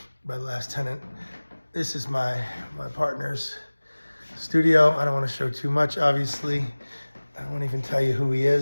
by the last tenant. This is my partner's studio. I don't want to show too much, obviously. I won't even tell you who he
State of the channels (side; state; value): both; inverted; correlation -1.00